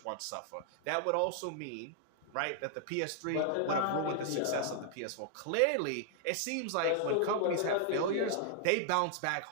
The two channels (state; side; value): different; both; correlation 0.00